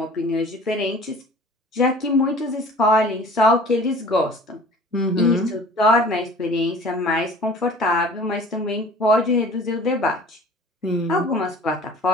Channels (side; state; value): both; normal; correlation 0.46